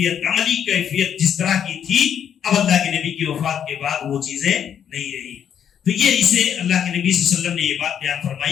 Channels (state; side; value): quieter; right; 8.8 dB